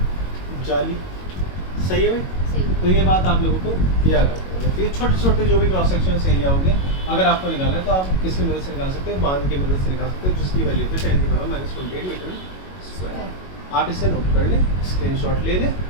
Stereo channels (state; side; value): late; right; 22 ms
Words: जाली। सही है भाई? तो ये बात आप लोगों को याद रखनी है। तो ये छोटे छोटे जो भी क्रॉस सेक्शन एरिया होंगे, अगर आपको निकालना है तो आप किसकी मदद से निकाल सकते हो? बांध की मदद से निकाल सकते हो, जिसकी वैल्यू होती है 10 की पावर -28 मीटर स्क्वायर। आप इसे नोट कर लें, स्क्रीनशॉट ले लें।